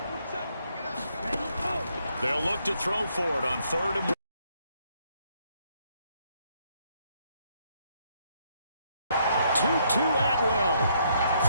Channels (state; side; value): inverted; both; correlation -0.72